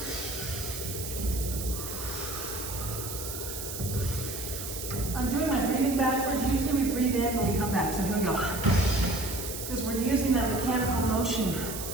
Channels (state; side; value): noise; right; hiss, 7 dB below the sound